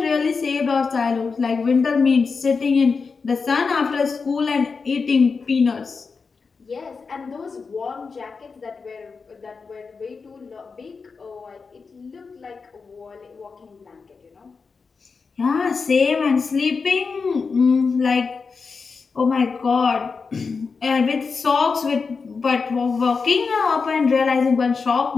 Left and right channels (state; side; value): quieter; right; 4.9 dB